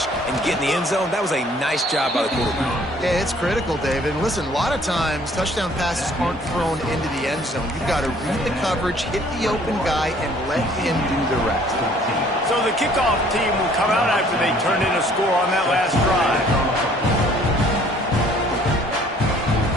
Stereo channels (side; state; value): both; normal; correlation 0.58